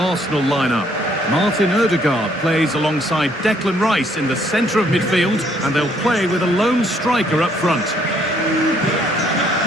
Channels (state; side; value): normal; both; correlation 0.66